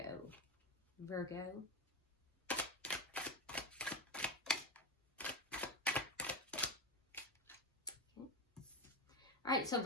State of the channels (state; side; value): normal; both; correlation 0.15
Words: Virgo. Okay. All right, so